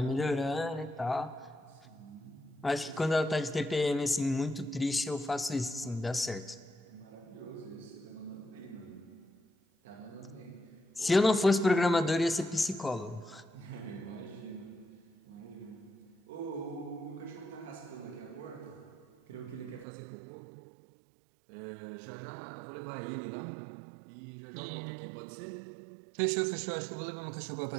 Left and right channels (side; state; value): left; drops out; at 19.9 s